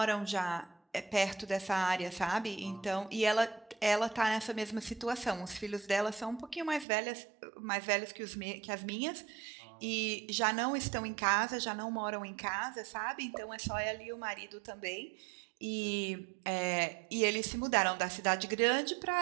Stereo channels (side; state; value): left; drops out; at 6.9 s